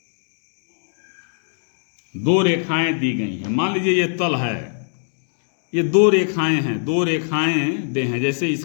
दो रेखाएं दी गई हैं, मान लीजिए ये तल है, ये दो रेखाएं हैं, दो रेखाएं दे हैं। जैसे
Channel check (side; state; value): right; silent; digital silence